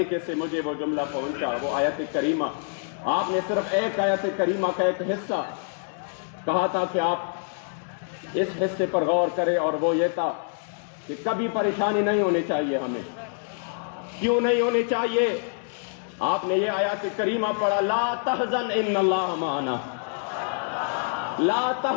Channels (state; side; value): silent; right; 61 dB below the other